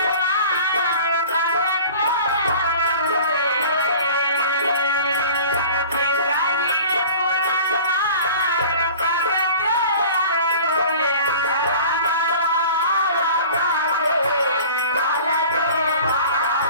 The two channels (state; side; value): inverted; both; correlation -0.43